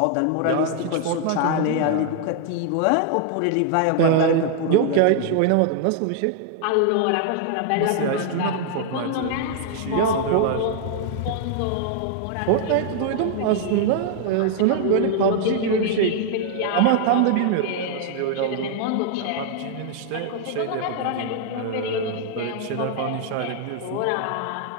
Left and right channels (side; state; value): both; different; correlation 0.00